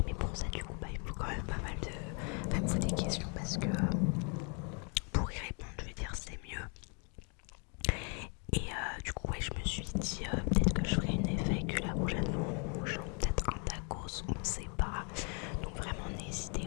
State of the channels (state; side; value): quieter; right; 37.4 dB